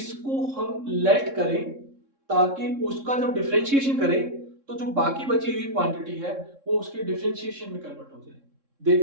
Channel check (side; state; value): left; late; 3.7 ms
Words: हम लेट करें ताकि उसका जब डिफरेंशिएशन करें तो जो बाकी बची हुई क्वांटिटी है वो उसके डिफरेंशिएशन में कन्वर्ट हो जाए।